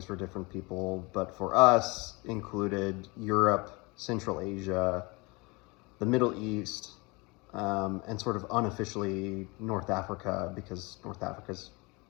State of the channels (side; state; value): right; quieter; 26.3 dB